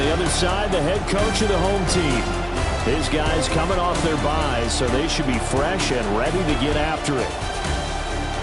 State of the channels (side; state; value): both; identical; correlation 1.00